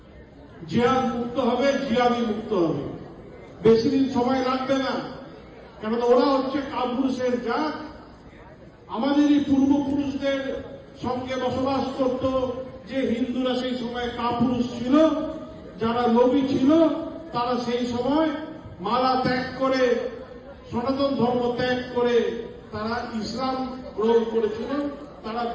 জিহাদ মুক্ত হবে, জিহাদি মুক্ত হবে। বেশি দিন সময় লাগবে না, কেননা ওরা হচ্ছে কাপুরুষের জাত। আমাদেরই পূর্বপুরুষদের সঙ্গে বসবাস করত যে হিন্দুরা, সেই সময় কাপুরুষ ছিল। যারা নবী ছিল তারা সেই সময় মালা ত্যাগ করে, সনাতন ধর্ম ত্যাগ করে তারা ইসলাম গ্রহণ করেছিল। তারা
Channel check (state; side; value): identical; both; correlation 1.00